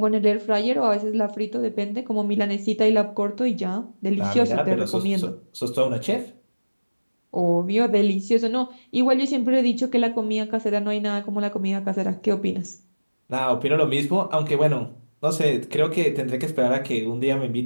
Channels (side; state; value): both; inverted; correlation -1.00